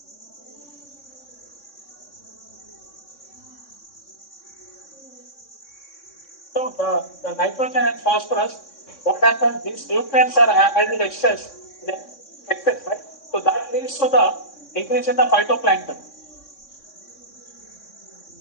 So the nitrogen and phosphorus, what happens? These nutrients are added excess, right? So that leads to the increase in the phytoplankton.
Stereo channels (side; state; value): right; late; 3.6 ms